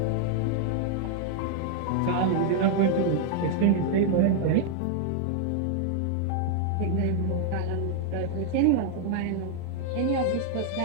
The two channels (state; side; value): different; both; correlation 0.00